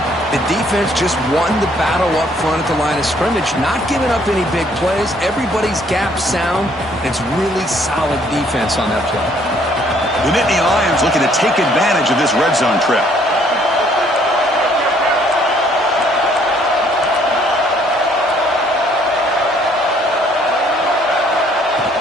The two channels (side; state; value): both; normal; correlation 0.63